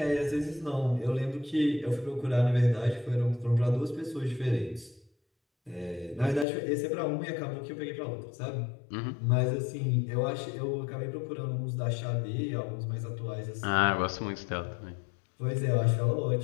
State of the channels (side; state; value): right; drops out; at 6.5 s